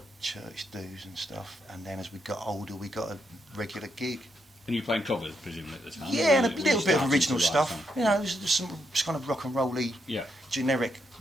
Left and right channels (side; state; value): both; normal; correlation 0.79